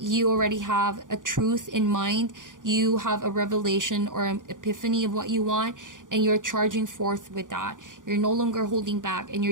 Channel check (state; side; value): late; left; 0.88 ms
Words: already have a truth in mind. You have a revelation or an epiphany of what you want, and you're charging forth with that. You're no longer holding back, and